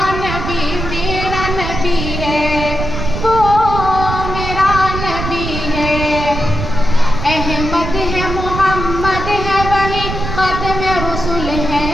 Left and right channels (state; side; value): noise; right; rumble, 5 dB below the sound